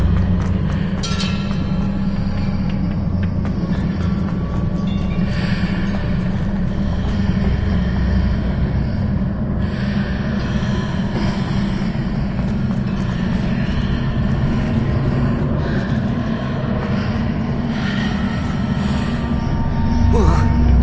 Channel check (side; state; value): both; identical; correlation 1.00